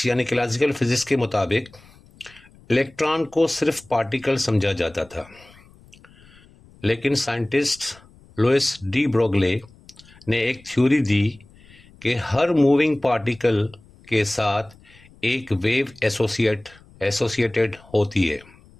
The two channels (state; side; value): noise; left; rumble, 26 dB below the sound